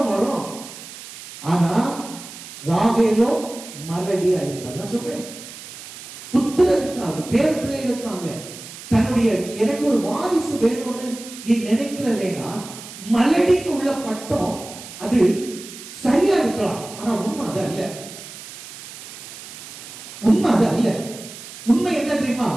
வரும்? ஆனா ராகேலோ மலடியா இருந்தார். நான் சொல்றேன், புத்திரனுக்காக பேர் பிள்ளைகளுக்காக தன்னுடைய எனக்கு ஒரு வாரிசு வேணும்னு நீ நினைக்கிறதேனா மலடின்னு உள்ள பட்டம் அது சரியா இருக்கலாம். ஆனா உண்மை அது அல்ல. உண்மை அது அல்ல. உண்மை என்ன தெரியுமா?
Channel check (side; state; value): right; noise; hiss, 14 dB below the sound